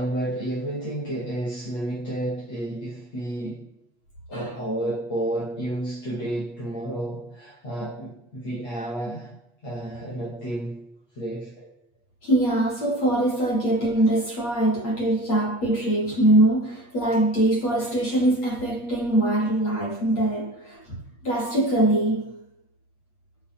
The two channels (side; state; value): right; late; 8.4 ms